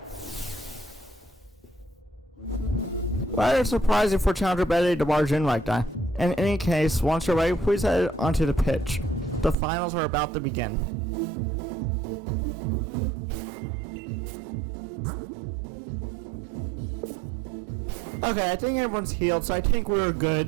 Rather surprising for Challenger Bede to barge in like that. In any case, once you're ready, please head onto the pitch. The finals are about to begin. Okay, I think everyone's healed, so I think we're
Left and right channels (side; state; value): left; drops out; at 9.6 s